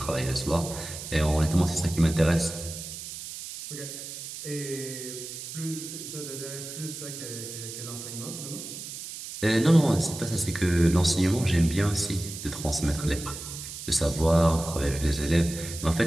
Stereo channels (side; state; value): right; noise; hiss, 10 dB below the sound